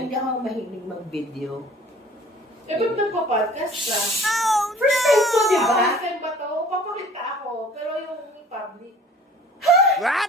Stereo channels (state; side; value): normal; both; correlation 0.49